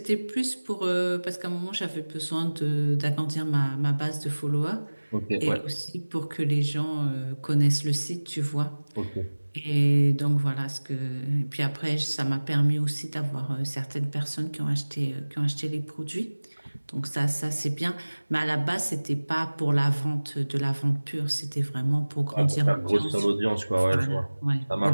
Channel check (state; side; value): inverted; both; correlation -1.00